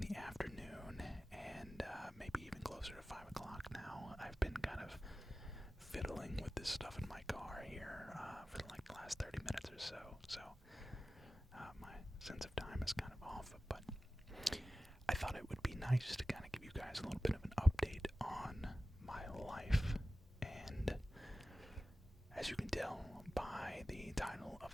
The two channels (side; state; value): both; normal; correlation 0.95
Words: afternoon, and maybe even closer to 5 o'clock now. I've been kind of fiddling with this stuff in my car here for like the last 30 minutes or so. So my sense of time is kind of off, but I thought it would be nice to kind of give you guys a little bit of an update on my life. And as you can tell by the title